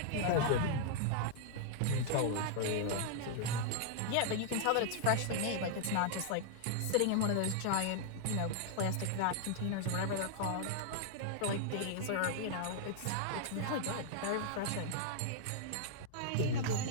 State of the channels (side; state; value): both; different; correlation -0.01